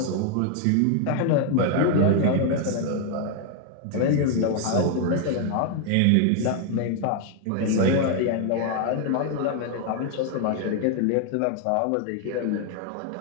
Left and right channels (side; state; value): both; different; correlation 0.00